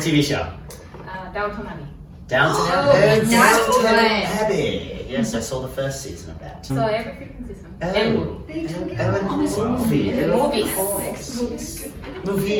TV show? Downton Abbey. Downton Oh, Abbey. that's Downton right. Abbey. Yes, I saw the first season of that. So every freaking season. Oh, And movie. movies.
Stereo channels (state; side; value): identical; both; correlation 1.00